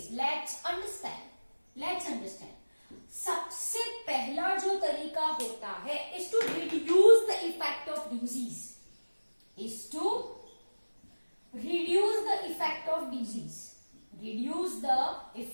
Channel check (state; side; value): inverted; both; correlation -1.00